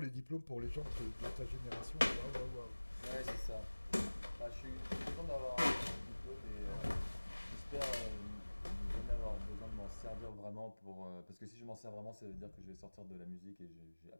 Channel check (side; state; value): both; inverted; correlation -1.00